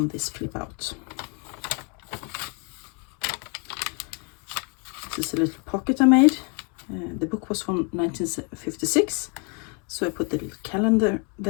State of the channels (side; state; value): right; quieter; 34.9 dB